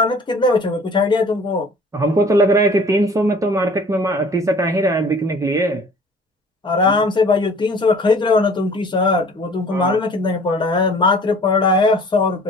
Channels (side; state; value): both; normal; correlation 0.49